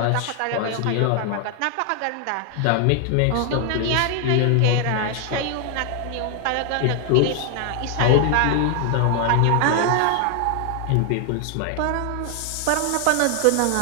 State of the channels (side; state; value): both; different; correlation 0.00